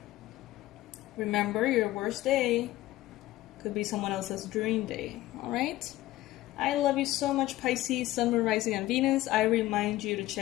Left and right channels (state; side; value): quieter; right; 16.3 dB